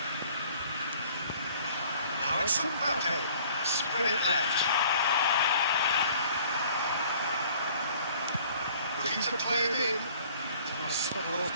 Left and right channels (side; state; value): both; inverted; correlation -0.54